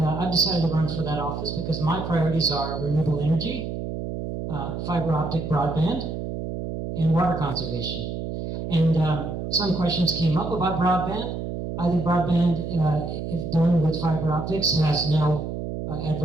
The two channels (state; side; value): noise; right; hum, 5 dB below the sound